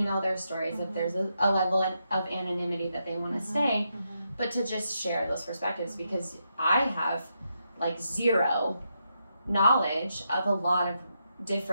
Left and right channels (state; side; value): inverted; both; correlation -0.82